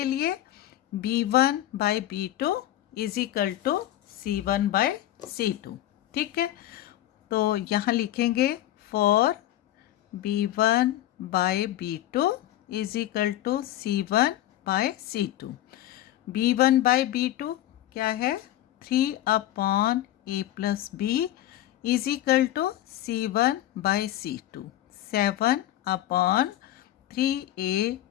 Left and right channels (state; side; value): quieter; right; 13.8 dB